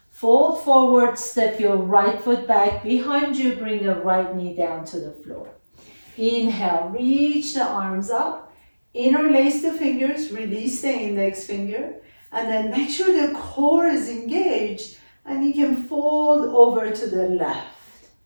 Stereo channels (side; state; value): both; inverted; correlation -1.00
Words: fold forward, step your right foot back behind you, bring the right knee down to the floor. Inhale, reach the arms up, interlace the fingers, release the index finger, and then make sure the core is engaged and you can fold over to the left.